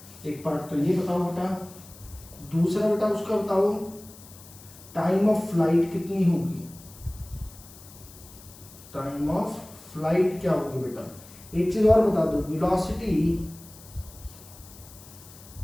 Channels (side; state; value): left; noise; hiss, 20 dB below the sound